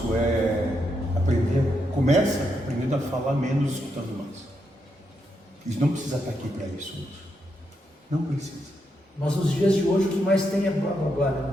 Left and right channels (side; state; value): both; normal; correlation 0.81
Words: é aprender, começa aprendendo a falar menos, escutando mais. Isso não precisa estar aqui para isso, não precisa. Mas nos dias de hoje o que mais tem é blá blá blá, né?